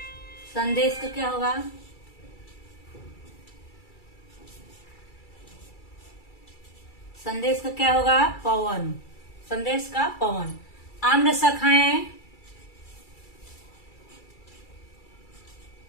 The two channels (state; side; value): late; right; 2.3 ms